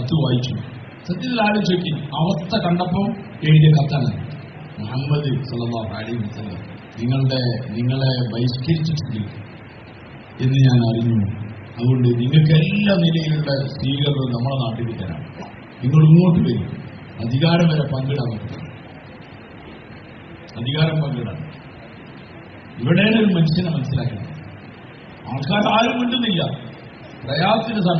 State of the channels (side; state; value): both; identical; correlation 1.00